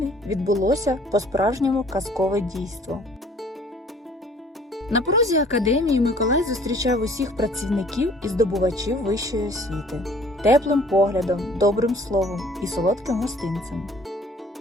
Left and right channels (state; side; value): normal; both; correlation 0.55